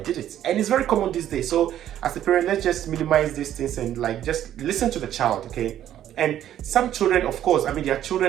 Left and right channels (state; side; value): quieter; left; 11.4 dB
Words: it. And it's very common these days. So as a parent, let's just minimize these things and like just listen to the child, okay? And some children, of course, I mean, they are